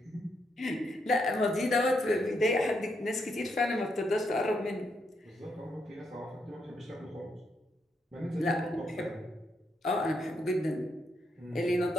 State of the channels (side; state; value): both; normal; correlation 0.79